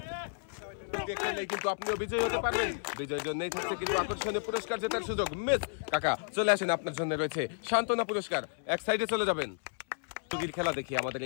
কিন্তু আপনিও বিজয়ী হতে পারবেন। বিজয়ের জন্যই থাকছে কিন্তু আকর্ষণীয় পুরস্কার জেতার সুযোগ। মিস কাকা চলে আসেন, আপনার জন্য রয়েছে সান্ত্বনা পুরস্কার। এক সাইডে চলে যাবেন। খেলা দেখি আমাদের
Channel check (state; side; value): silent; right; 56 dB below the other